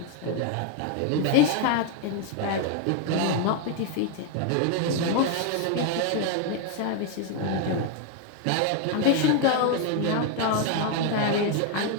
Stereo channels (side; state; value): both; different; correlation 0.01